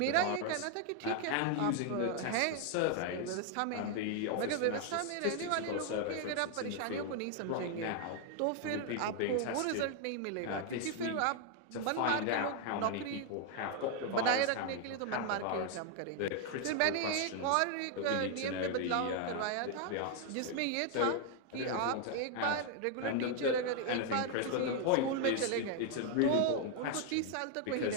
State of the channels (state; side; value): different; both; correlation 0.00